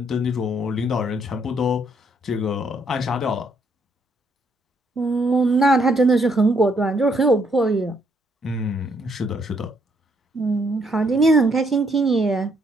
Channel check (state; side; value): normal; both; correlation 0.71